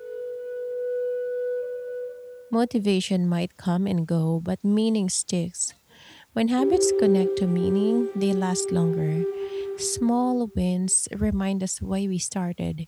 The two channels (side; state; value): both; identical; correlation 1.00